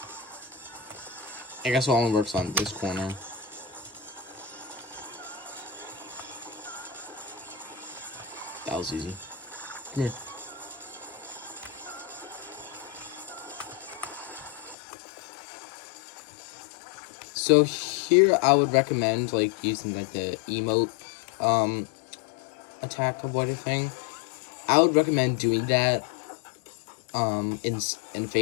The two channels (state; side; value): drops out; right; at 14.8 s